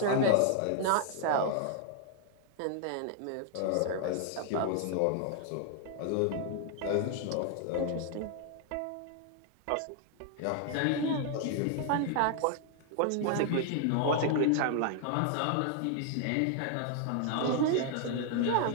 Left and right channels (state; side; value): different; both; correlation 0.00